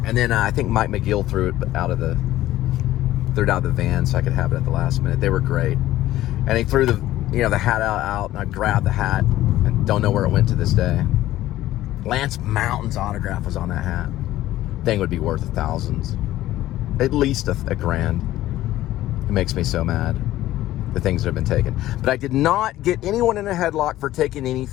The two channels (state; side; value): quieter; right; 14.8 dB